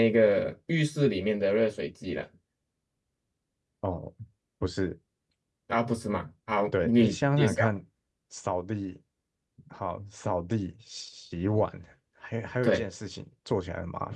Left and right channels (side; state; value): both; identical; correlation 1.00